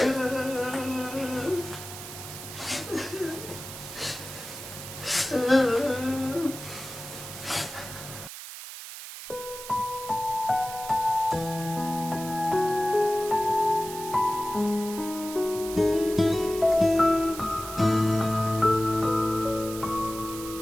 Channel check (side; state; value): right; noise; hiss, 11 dB below the sound